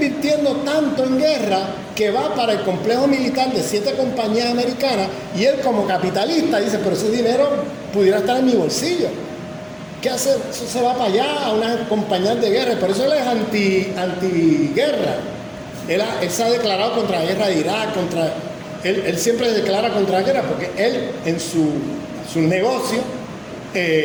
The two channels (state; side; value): identical; both; correlation 1.00